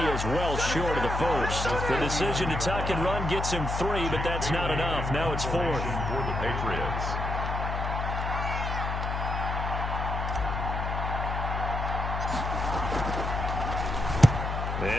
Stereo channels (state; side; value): noise; left; hum, 2 dB below the sound